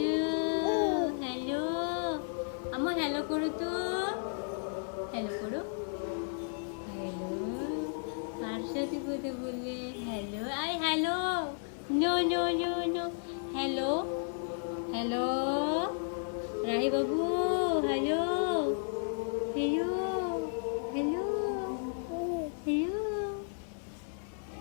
হ্যালো, আমার হ্যালো করো তো। হ্যালো করো। হ্যালো, কার সাথে কথা বললে? Hello, I hello. No no no no. Hello, hello, Rahi বাবু। Hello, hello, hello, hello.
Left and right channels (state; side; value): silent; right; digital silence